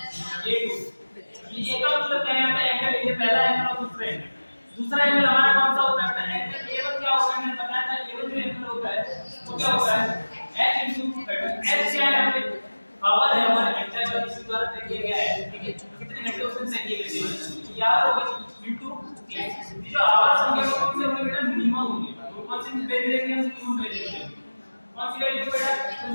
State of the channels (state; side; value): inverted; both; correlation -1.00